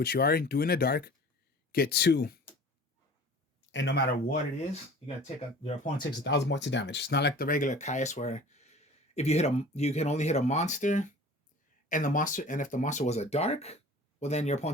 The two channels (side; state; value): both; normal; correlation 0.43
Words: you are doing a dark, get 2. And no matter what it is, you're gonna take your opponent takes 1,000 points of damage. It's not like the regular Caius where if you hit you can only hit a monster, and if the monster was a dark, well then your